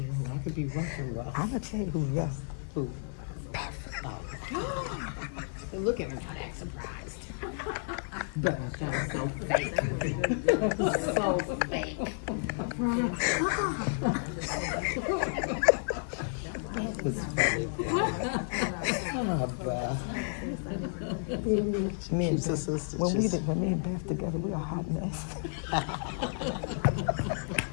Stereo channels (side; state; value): right; silent; 57 dB below the other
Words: I could be rough and rough. I'm gonna tell you who's rough. Who? Oh. Look at her, not that surprised. But that was so fake. So fake. That was funny. Me and She's a sister. when me and Beth together, we a hot mess.